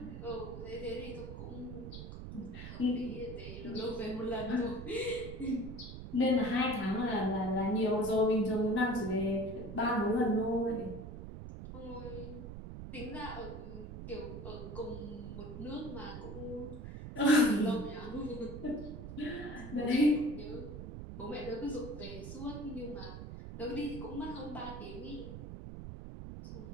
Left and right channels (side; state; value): right; noise; rumble, 9 dB below the sound